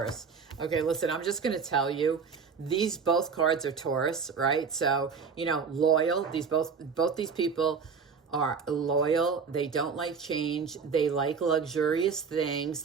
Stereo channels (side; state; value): left; quieter; 5.8 dB